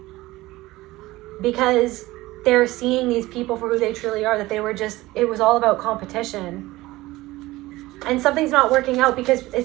because they're seeing these people for who they truly are, that it was all about competition. And something's not working out because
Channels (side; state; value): left; quieter; 18.6 dB